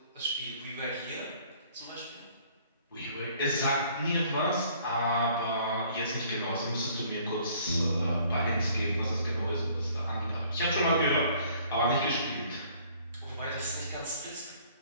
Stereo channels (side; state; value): both; inverted; correlation -0.58